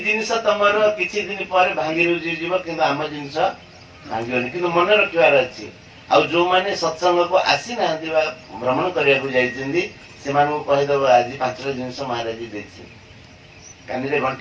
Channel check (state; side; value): identical; both; correlation 1.00